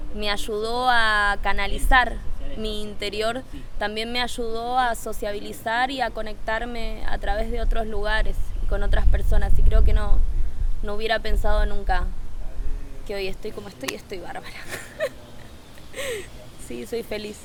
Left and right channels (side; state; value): both; identical; correlation 1.00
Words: me ayudó a canalizar mi interior, también me ayudó a sociabilizar y a conectarme a través de otros lugares y con otras personas, y creo que no hubiera pensado nunca que hoy estoy como estoy bárbara. Sí, soy feliz,